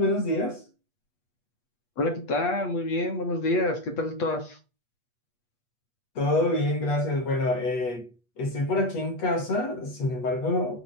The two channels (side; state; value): right; late; 8.3 ms